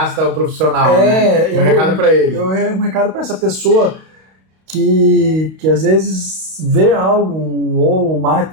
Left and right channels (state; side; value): late; left; 32 ms